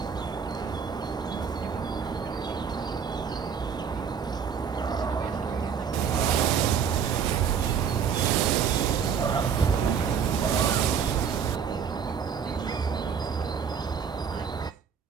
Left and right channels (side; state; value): left; quieter; 7.1 dB